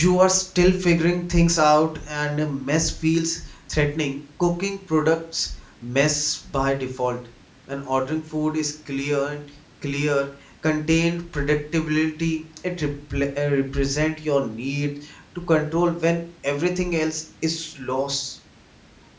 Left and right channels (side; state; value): both; identical; correlation 1.00